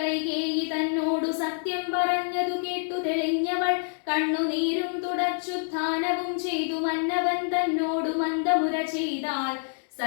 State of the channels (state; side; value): silent; right; 60 dB below the other